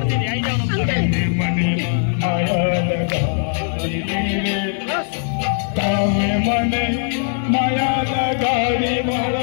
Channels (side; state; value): right; silent; digital silence